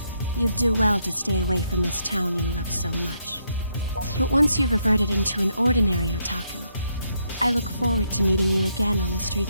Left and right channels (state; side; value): inverted; both; correlation -0.76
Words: you'd do well to stay away from this town you love so much. But once you've reverted into an ordinary otaku, I look forward to meeting you again on the